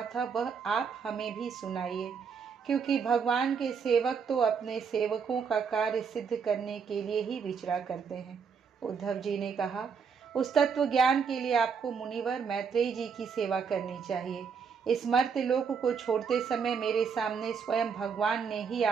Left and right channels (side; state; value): left; quieter; 6.2 dB